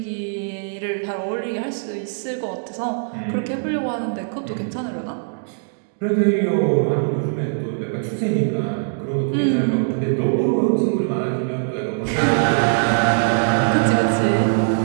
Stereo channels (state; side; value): silent; left; digital silence